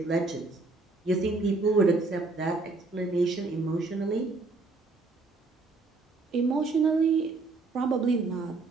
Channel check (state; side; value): quieter; left; 3.7 dB